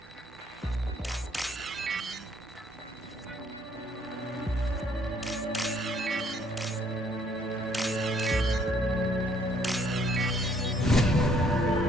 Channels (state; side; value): normal; both; correlation 0.65